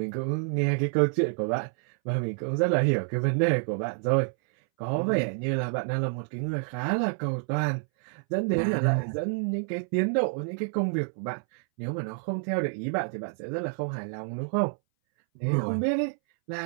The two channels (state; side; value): silent; left; 59 dB below the other